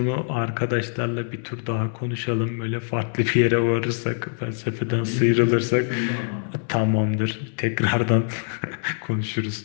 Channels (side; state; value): right; silent; digital silence